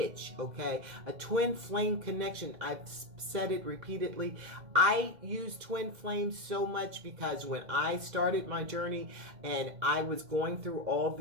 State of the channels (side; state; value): left; late; 2.1 ms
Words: Okay, a twin flame connection, I've said it repeatedly. I use twin flames so much because when I started my journey and I was going through all